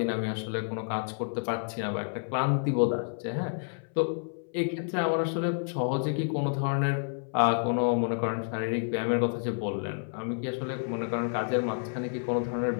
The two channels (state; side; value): silent; right; 58 dB below the other